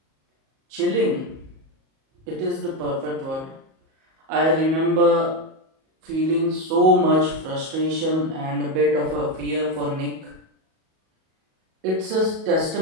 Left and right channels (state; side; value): late; left; 37 ms